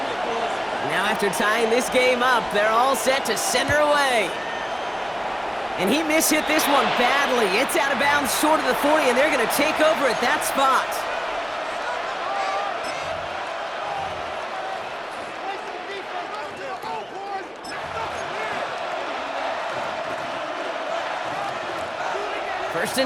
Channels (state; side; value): identical; both; correlation 1.00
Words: Now after tying this game up, they're all set to send her away. And he mishit this one badly. It's out of bounds short of the 40, and they're going to take over at that spot. First